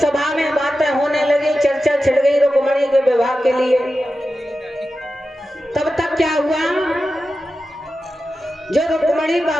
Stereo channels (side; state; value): both; normal; correlation 0.92